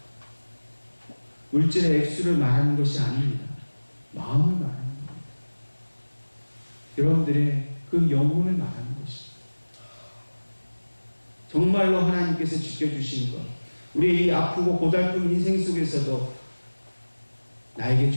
물질의 액수를 말하는 것이 아닙니다. 마음을 말하는 겁니다. 여러분들의 그 영혼을 말하는 것입니다. 정말로 하나님께서 지켜주신 것, 우리의 이 아프고 고달픈 인생 속에서도 나에게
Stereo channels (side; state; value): both; inverted; correlation -1.00